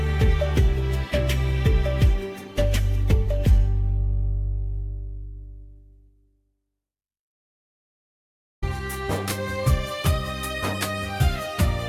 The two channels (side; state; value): both; identical; correlation 1.00